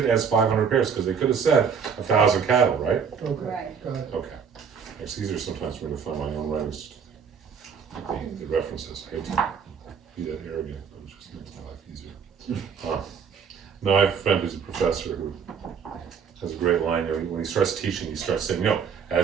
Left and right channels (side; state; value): left; quieter; 6.6 dB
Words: as 500 pairs because they could have said 1,000 cattle, right? Okay. Right. Got it. Okay. It's easier sometimes for me to find my own writings, the references. I hate to be that arrogant. It just makes my life easier. No, I have a friend who's a professor who has a great line. You know, when he starts teaching, he starts saying, "No,